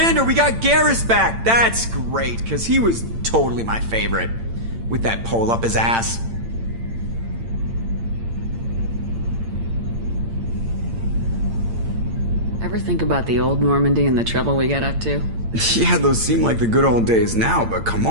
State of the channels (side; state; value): left; late; 8.8 ms